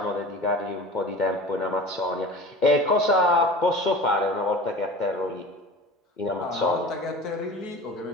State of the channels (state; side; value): normal; both; correlation 0.37